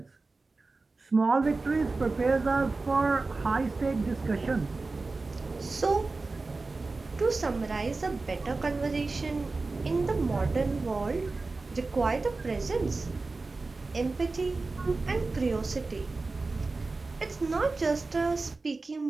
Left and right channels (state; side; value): quieter; left; 3.7 dB